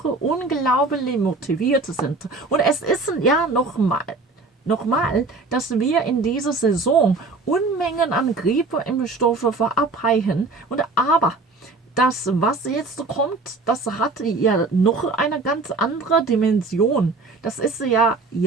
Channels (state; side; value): quieter; left; 3.7 dB